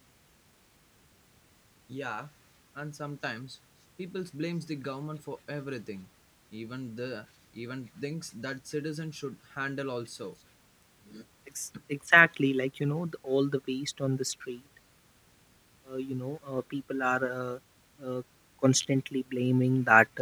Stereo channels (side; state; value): both; identical; correlation 1.00